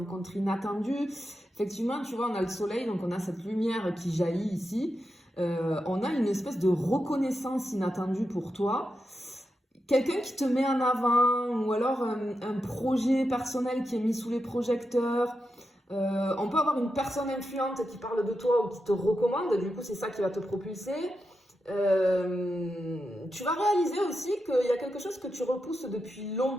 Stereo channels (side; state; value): both; normal; correlation 0.88